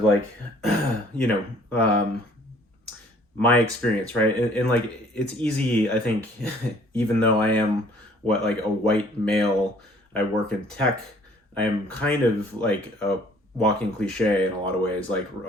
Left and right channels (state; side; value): normal; both; correlation 0.57